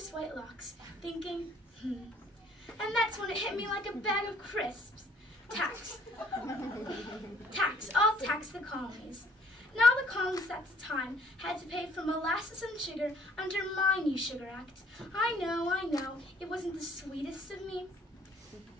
white locks, thinking, And that's when it hit me like a bag of crisps. Tax. Tax. I'll tax the colonies. Now the colonists at the time had to pay for molasses and sugar under my new Sugar Act. I know, it wasn't the sweetest of me.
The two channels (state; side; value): normal; both; correlation 0.60